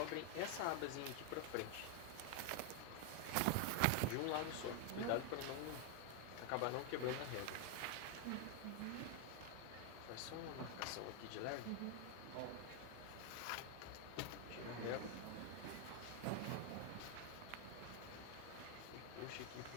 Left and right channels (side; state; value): both; different; correlation 0.01